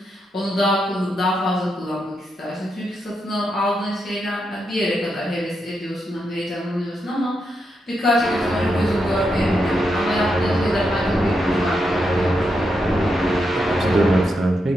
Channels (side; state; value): both; normal; correlation 0.83